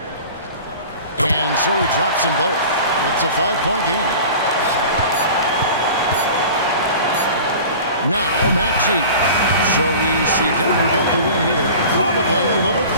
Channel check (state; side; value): inverted; both; correlation -0.39